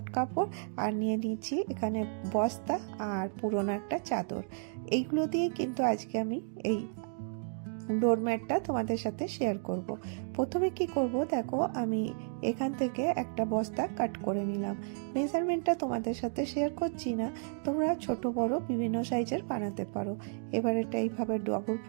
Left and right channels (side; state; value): left; silent; digital silence